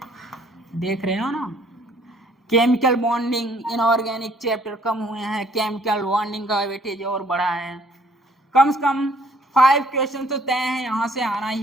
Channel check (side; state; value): both; normal; correlation 0.61